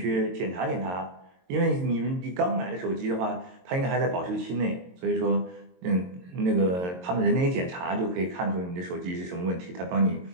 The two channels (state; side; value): late; left; 22 ms